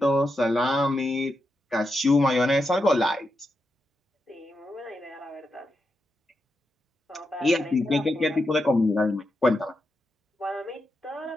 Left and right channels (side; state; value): both; normal; correlation 0.86